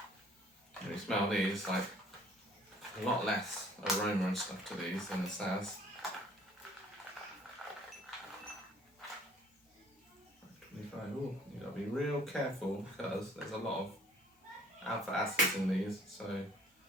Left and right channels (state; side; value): normal; both; correlation 0.56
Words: When you smell these, like a lot less aroma and stuff to these than the Saz. 25. Ooh, you gotta be real careful because there's a lot of alpha acids in these, so